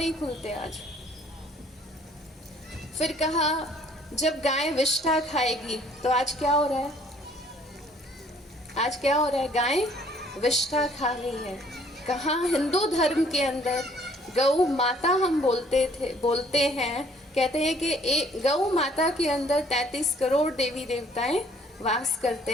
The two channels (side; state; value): both; normal; correlation 0.59